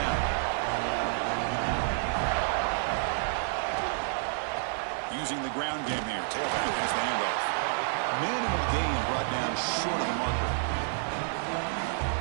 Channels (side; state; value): left; silent; digital silence